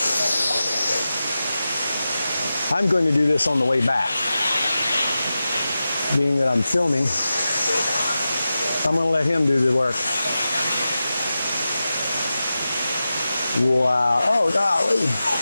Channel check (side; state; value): both; inverted; correlation -0.93